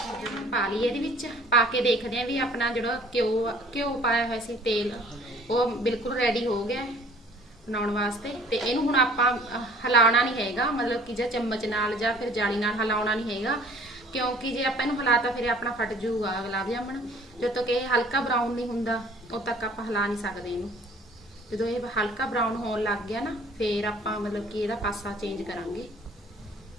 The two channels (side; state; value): both; normal; correlation 0.53